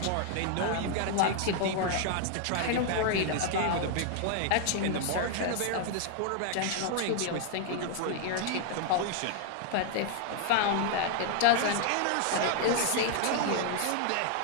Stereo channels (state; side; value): different; both; correlation 0.00